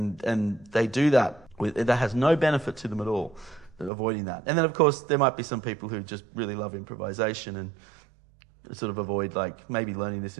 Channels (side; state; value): left; drops out; at 3.9 s